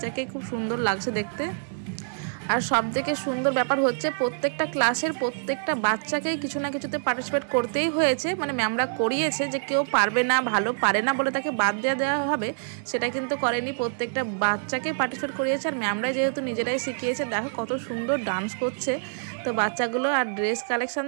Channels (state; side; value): silent; left; digital silence